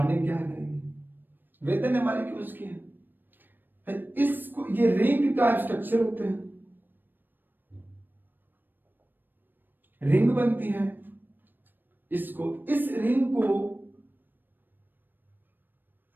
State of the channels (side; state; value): left; late; 0.093 ms